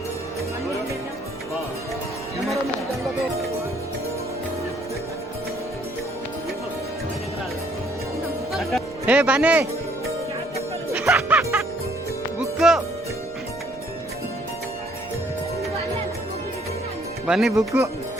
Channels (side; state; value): right; noise; rumble, 22 dB below the sound